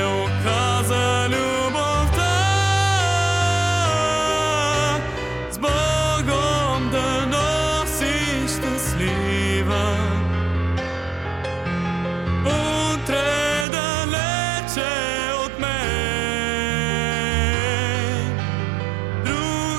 оказа любовта. С Богом да носиш щастлива. Утре далече от мен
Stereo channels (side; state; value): left; drops out; at 13.7 s